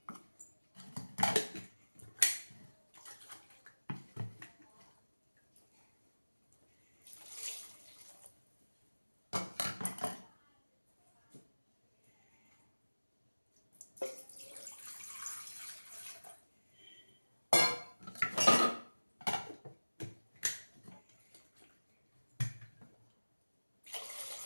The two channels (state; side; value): inverted; both; correlation -1.00